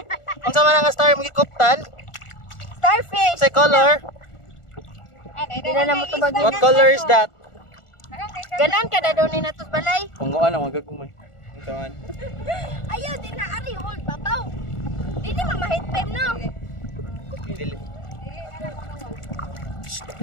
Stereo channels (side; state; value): right; late; 1.4 ms